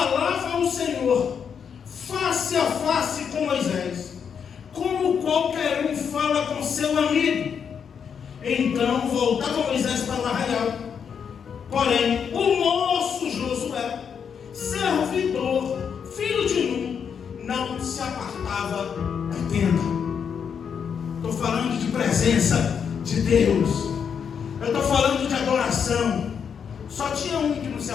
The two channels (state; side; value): quieter; right; 7.1 dB